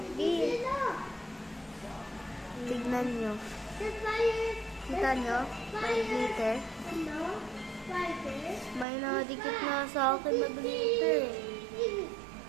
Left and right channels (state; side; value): drops out; left; at 8.8 s